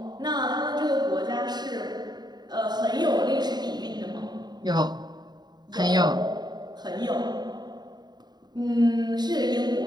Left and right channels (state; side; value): late; left; 0.20 ms